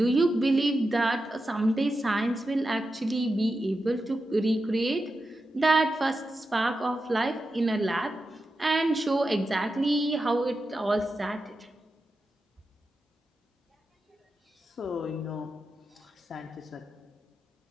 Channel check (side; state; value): both; normal; correlation 0.90